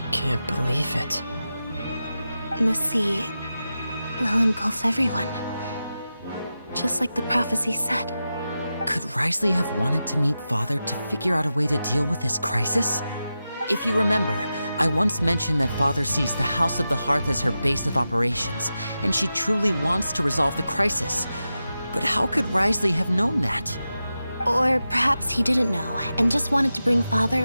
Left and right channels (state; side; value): inverted; both; correlation -0.92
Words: can't believe it. The sea will engulf everyone. Just like the prophecy said. Could Risley have wanted to meet Father to figure out a way to deal with this crisis? If you remember, I once mentioned that Father sees the House of the Hearth as her base of operations, and she truly wants to resolve the crisis. But how could Risley have known that? Or perhaps he didn't know, and just wanted to bring Father